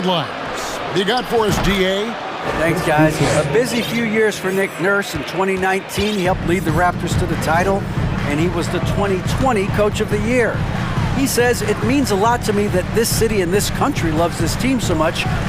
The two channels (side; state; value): both; identical; correlation 1.00